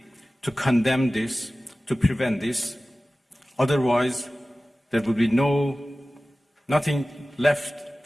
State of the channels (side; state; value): both; normal; correlation 0.97